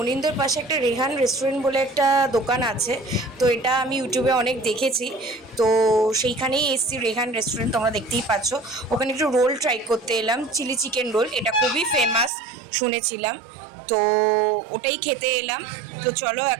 পাশে একটা রেহান রেস্টুরেন্ট বলে একটা দোকান আছে, তো এটা আমি ইউটিউবে অনেক দেখেছি, তো সেইখানেই এসছি রেহান রেস্টুরেন্ট, তোমরা দেখতেই পাচ্ছ। ওখানে একটু রোল ট্রাই করতে এলাম, চিলি চিকেন রোল, এটা খুবই ফেমাস শুনেছিলাম, তো ওটাই খেতে এলাম। তো চলো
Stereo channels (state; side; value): drops out; left; at 12.3 s